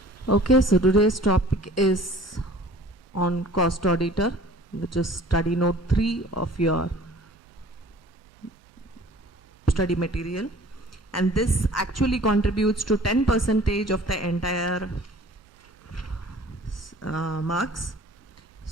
Okay, so today's topic is on cost auditor, which is study note 3 of your study material, and this actually contributes to 10% of the entire marks.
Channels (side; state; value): both; normal; correlation 0.49